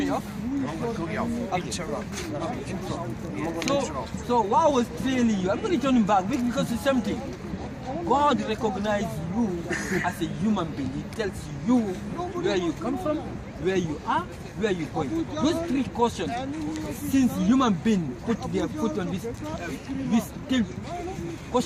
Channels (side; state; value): both; identical; correlation 1.00